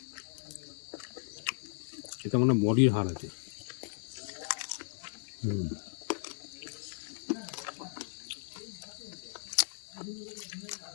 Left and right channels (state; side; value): silent; right; digital silence